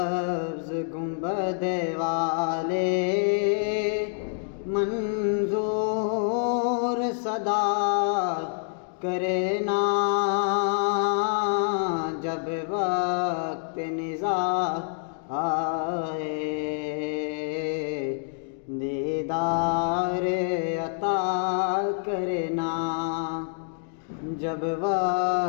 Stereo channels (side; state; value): right; silent; digital silence